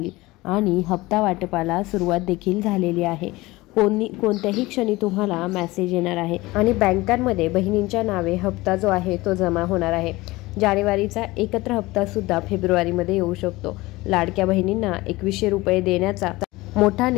आणि हप्ता वाटपाला सुरुवात देखील झालेली आहे। कोणत्याही क्षणी तुम्हाला मेसेज येणार आहे आणि बँकांमध्ये बहिणींच्या नावे हप्ता जो आहे तो जमा होणार आहे। जानेवारीचा एकत्र हप्ता सुद्धा फेब्रुवारीमध्ये येऊ शकतो। लाडक्या बहिणींना 2100 रुपये देण्याचा मोठा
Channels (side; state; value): right; quieter; 20.3 dB